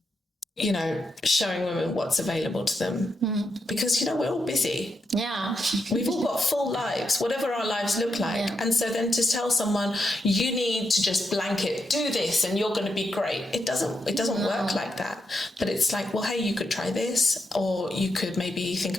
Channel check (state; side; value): normal; both; correlation 0.83